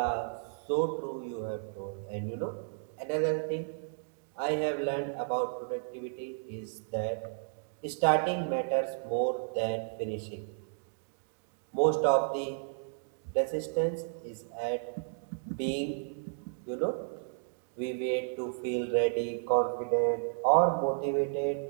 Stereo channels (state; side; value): silent; left; digital silence